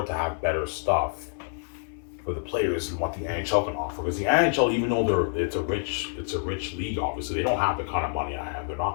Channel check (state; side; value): silent; right; 60 dB below the other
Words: to have better stuff for the players and what the NHL can offer. Because the NHL, even though it's a rich league, obviously they don't have the kind of money I have. They're